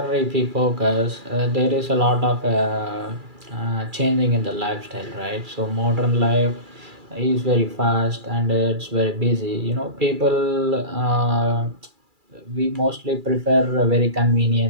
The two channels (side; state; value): left; late; 2.4 ms